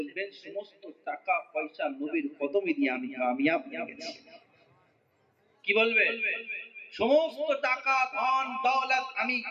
সমস্ত টাকা পয়সা নবীর কদমে দিয়ে আমি কামিয়াব হয়ে গেছি। কি বলবে? সমস্ত টাকা ধন দৌলত আমি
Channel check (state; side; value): identical; both; correlation 1.00